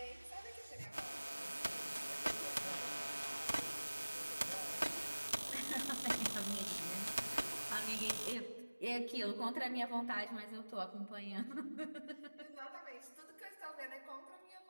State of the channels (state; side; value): inverted; both; correlation -1.00